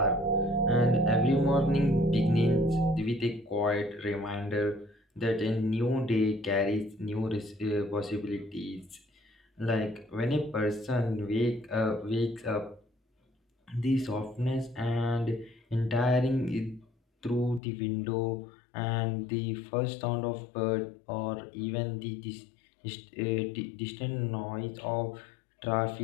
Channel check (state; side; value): drops out; right; at 17.6 s